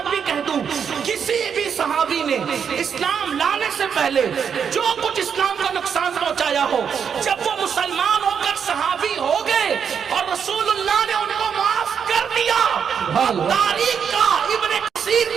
भी कह दूं, किसी भी सहाबी ने इस्लाम लाने से पहले जो कुछ इस्लाम का नुकसान पहुंचाया हो, जब वो मुसलमान होकर सहाबी हो गए और रसूलुल्लाह ने उनको माफ कर दिया, तारीख का, इब्ने कसीर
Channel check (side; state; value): left; quieter; 7.2 dB